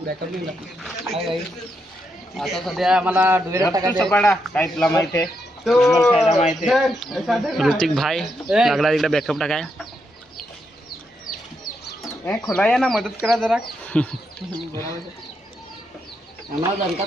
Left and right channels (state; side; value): normal; both; correlation 0.81